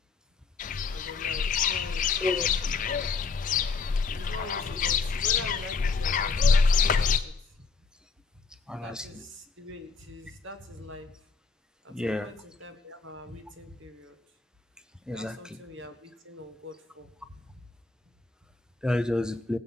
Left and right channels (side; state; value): right; quieter; 4.6 dB